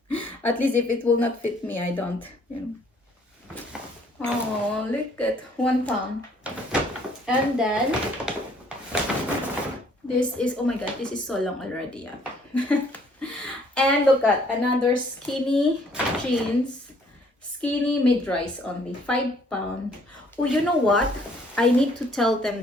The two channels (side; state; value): both; normal; correlation 0.62